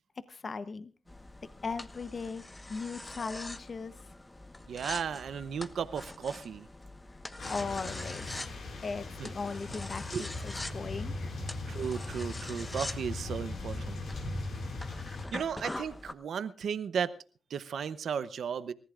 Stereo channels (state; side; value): normal; both; correlation 0.81